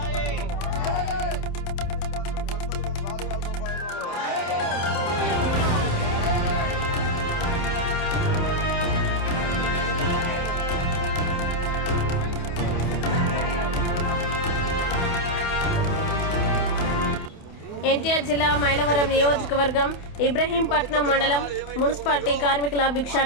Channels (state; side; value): late; right; 28 ms